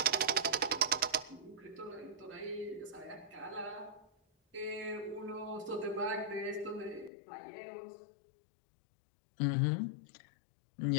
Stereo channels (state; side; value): drops out; right; at 7.1 s